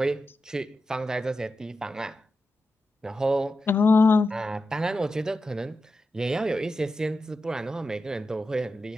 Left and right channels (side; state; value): both; normal; correlation 0.90